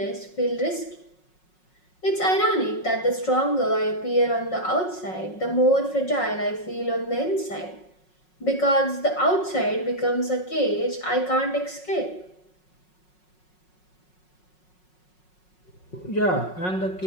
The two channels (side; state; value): right; late; 5.5 ms